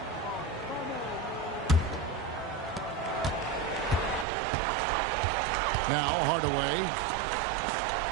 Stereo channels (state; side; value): drops out; left; at 4.2 s